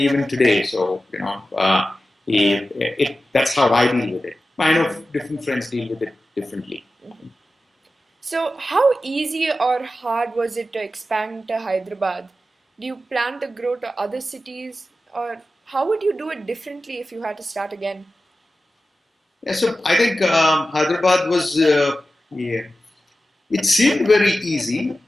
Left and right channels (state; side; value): normal; both; correlation 0.94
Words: even today. So, that's how I deal with it. I know different friends deal with it differently. So, how easy or hard was it to expand to Hyderabad? Do you plan to grow to other cities, or how would you do it differently if you had to start again? Yeah, so I think Hyderabad was, yeah, it seemed very easy